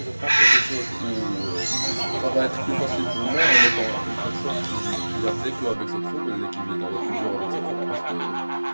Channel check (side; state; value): both; inverted; correlation -1.00